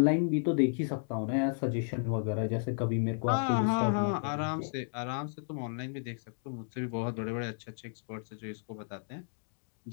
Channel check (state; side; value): silent; right; digital silence